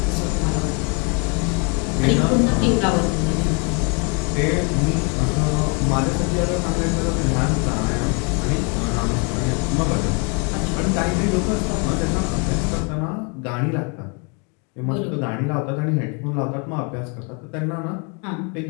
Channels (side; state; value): right; quieter; 34.9 dB